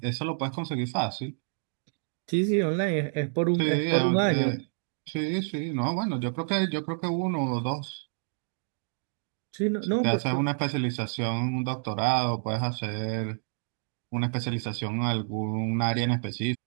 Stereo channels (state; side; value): silent; left; digital silence